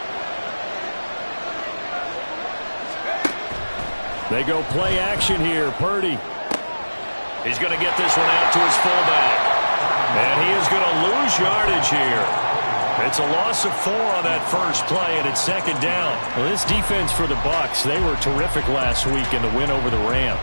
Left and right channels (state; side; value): inverted; both; correlation -1.00